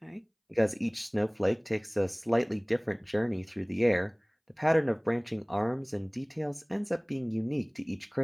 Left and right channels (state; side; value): identical; both; correlation 1.00